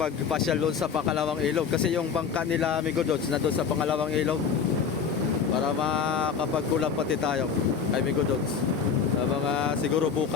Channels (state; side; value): quieter; right; 6.6 dB